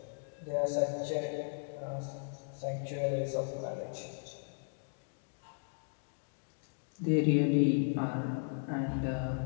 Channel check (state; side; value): silent; right; digital silence